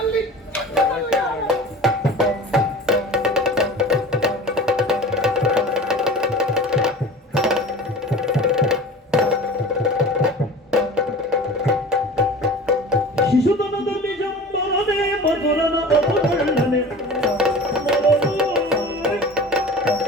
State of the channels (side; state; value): both; normal; correlation 0.38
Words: ಶಿಶುತನದಲ್ಲಿ ಜಂಬರನೆ ಮಧುರನ ಅಪಕರ್ಣನೆ